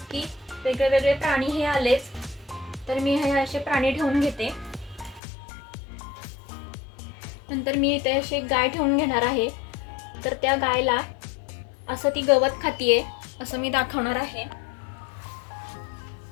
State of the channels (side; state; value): right; drops out; at 5.2 s